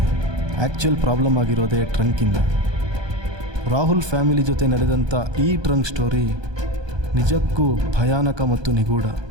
ಆ್ಯಕ್ಚುಯಲ್ ಪ್ರಾಬ್ಲಮ್ ಆಗಿರೋದೇ ಟ್ರಂಕಿಂದ. ರಾಹುಲ್ ಫ್ಯಾಮಿಲಿ ಜೊತೆ ನಡೆದಂಥ ಈ ಟ್ರಂಕ್ ಸ್ಟೋರಿ ನಿಜಕ್ಕೂ ಭಯಾನಕ ಮತ್ತು ನಿಗೂಢ.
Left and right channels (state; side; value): late; left; 1.2 ms